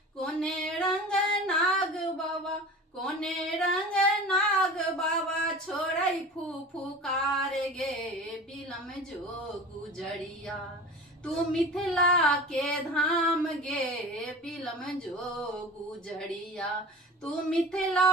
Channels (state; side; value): normal; both; correlation 0.37